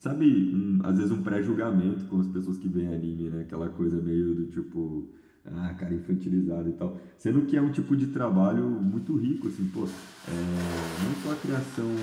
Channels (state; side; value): identical; both; correlation 1.00